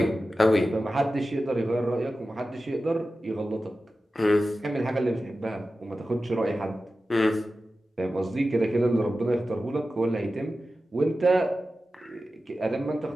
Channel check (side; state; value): both; normal; correlation 0.94